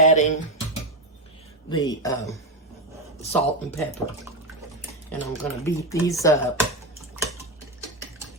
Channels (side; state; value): both; normal; correlation 0.11